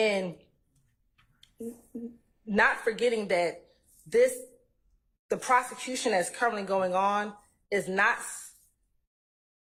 not forgetting that the prosecution that's currently going on is not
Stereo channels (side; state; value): both; identical; correlation 1.00